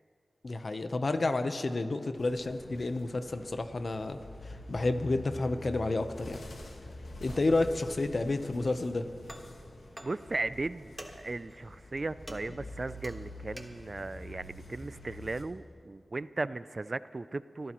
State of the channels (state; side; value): normal; both; correlation 0.96